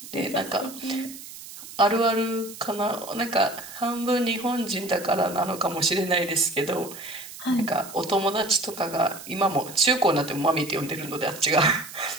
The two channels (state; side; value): noise; right; hiss, 14 dB below the sound